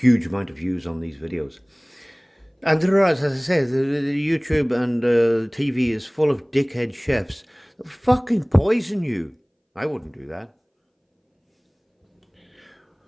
amount of views on these videos. And there are, as I say, the YouTube and TV is full of dickhead chefs that fucking poison you. I wouldn't do that.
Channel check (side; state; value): both; identical; correlation 1.00